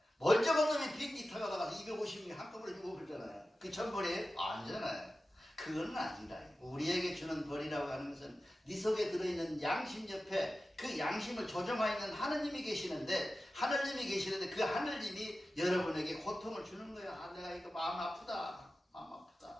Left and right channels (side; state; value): both; normal; correlation 0.94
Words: 멀쩡한 놈이 비행기 타고 나가서 250명 한꺼번에 죽어버리잖아요. 그 천벌이에요? 아니잖아요. 그건 아니다. 우리에게 주는 벌이라고 하는 것은 네 속에 들어있는 양심 옆에 그 양심을 조정하고 있는 하느님이 계시는데 그 하느님이 여러분에게 고통을 주는 거야. 아, 내가 이거 마음 아프다.